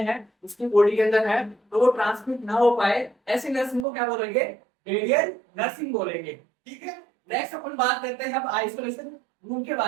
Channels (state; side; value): drops out; left; at 3.9 s